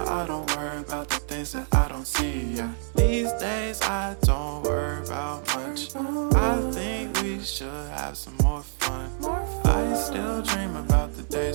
I don't worry about the things that I don't see, yeah. These days I don't worry about much. I think we should have some more fun. I still dream about the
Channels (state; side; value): silent; left; digital silence